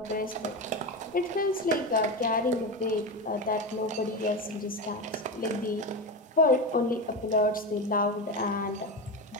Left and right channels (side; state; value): both; normal; correlation 0.19